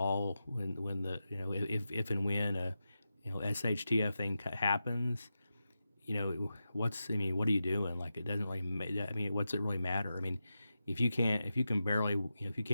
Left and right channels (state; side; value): inverted; both; correlation -0.91